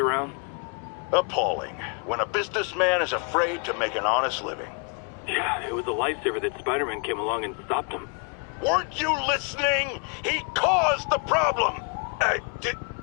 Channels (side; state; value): right; quieter; 38.0 dB